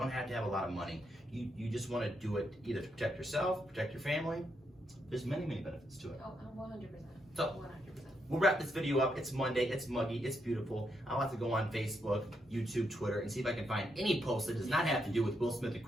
have to have a lot of money. You just want to do it either to protect yourself, protect your family. There's many benefits to it. Oh, 100%. So 100%. we'll wrap this video up. It's Monday, it's muggy, it's beautiful. I'll have to go on Facebook, YouTube, Twitter, and see if I can find any post that does not have to do with Will Smith and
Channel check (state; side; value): normal; both; correlation 0.80